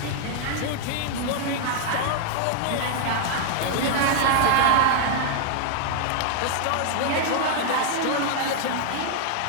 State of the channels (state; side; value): different; both; correlation 0.00